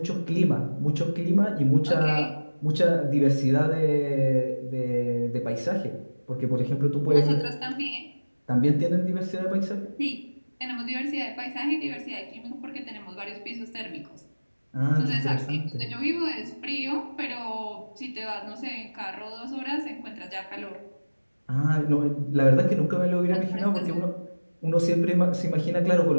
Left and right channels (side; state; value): both; inverted; correlation -1.00